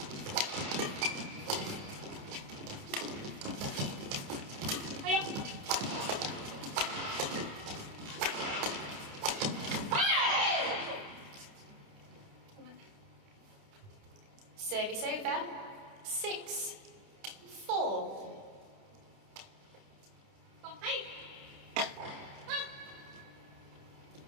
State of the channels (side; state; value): left; late; 29 ms